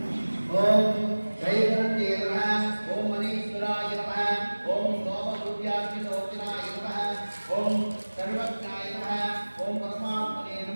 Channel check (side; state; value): both; inverted; correlation -1.00